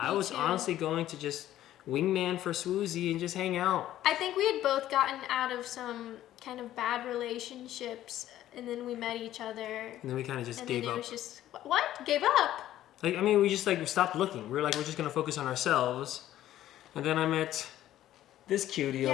was honestly going to just wingman for Swoozy and just hang out. I think we had both gotten out of some kind of bad relationships, and then we met each other. And then we kind of just gave up. And then it was just, what? Gave up? Like, I mean, we just like stopped looking. We were like, we're just gonna focus on ourselves. And then I met this cutie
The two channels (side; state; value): right; quieter; 13.1 dB